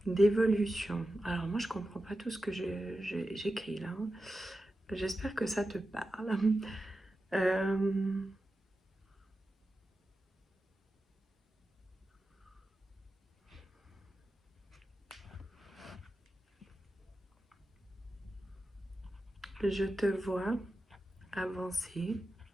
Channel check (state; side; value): normal; both; correlation 0.92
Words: d'évolution. Alors moi, je comprends pas tout ce que j'écris là. J'espère que ça te parle. Je te vois avancer